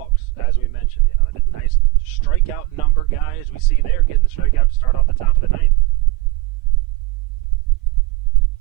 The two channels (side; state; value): left; quieter; 22.2 dB